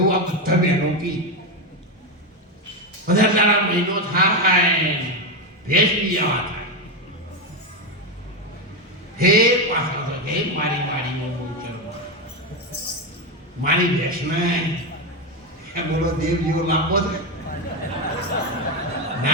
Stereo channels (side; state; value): both; normal; correlation 0.10